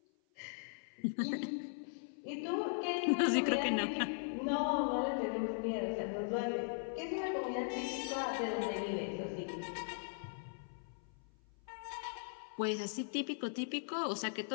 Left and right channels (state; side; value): silent; right; 52 dB below the other